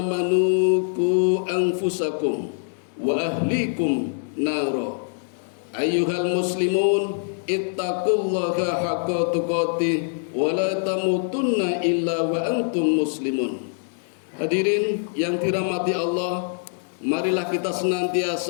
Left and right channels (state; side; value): silent; right; digital silence